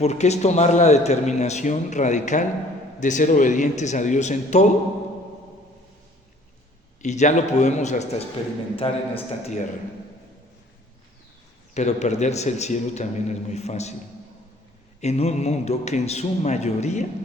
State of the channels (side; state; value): both; normal; correlation 0.55